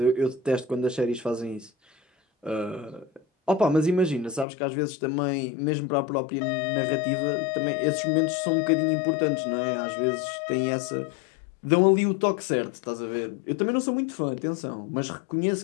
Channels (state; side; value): drops out; right; at 4.5 s